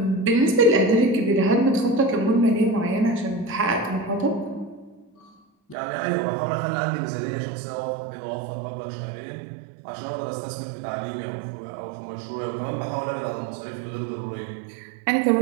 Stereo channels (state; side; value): drops out; left; at 5.8 s